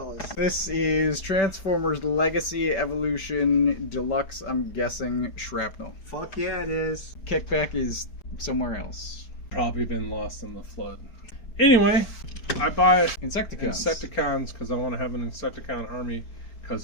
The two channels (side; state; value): right; late; 5.2 ms